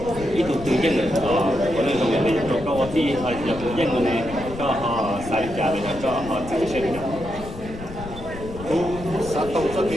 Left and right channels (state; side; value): noise; left; rumble, 12 dB below the sound